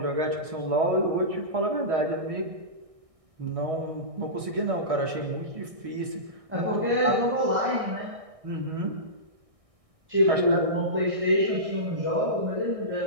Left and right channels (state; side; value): late; left; 1.6 ms